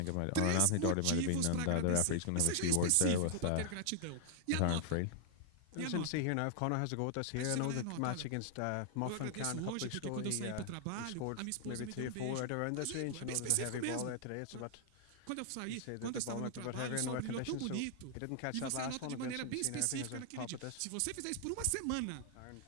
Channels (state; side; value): different; both; correlation 0.00